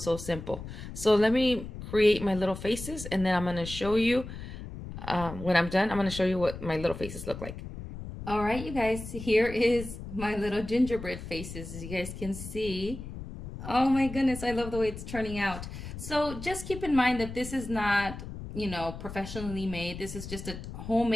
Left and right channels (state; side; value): noise; left; rumble, 10 dB below the sound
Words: So let me create my little faces, and then I'm going to show you, when I'm done, I'm going to show you what my little faces look like. All right, you guys, here is my little gingerbread faces, as you guys can see. Oh my goodness, I love the way it's turning out. So just keep in mind that this is not, you know, professionally made. This is just a